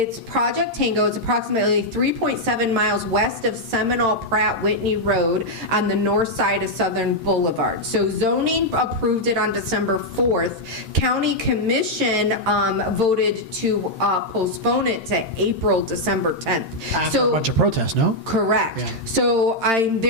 Project Tango. It's approximately 3.7 miles west of Seminole Pratt Whitney Road on the north side of Southern Boulevard. So zoning approved it on December 4th. County Commission voted to postpone it to April, December 10th. After a bunch of protests, no? Correct. Yeah. So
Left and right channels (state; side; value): late; left; 13 ms